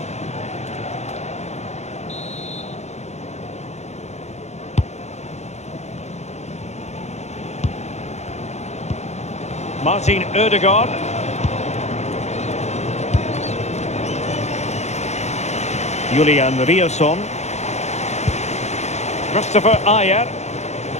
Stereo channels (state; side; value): late; right; 0.32 ms